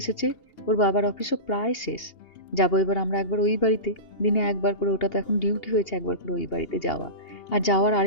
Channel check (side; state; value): right; late; 2.8 ms